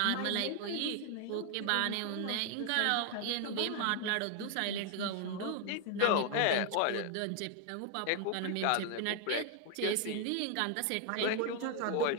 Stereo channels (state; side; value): different; both; correlation 0.00